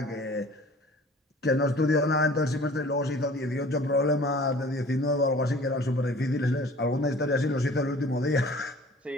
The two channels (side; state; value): both; normal; correlation 0.47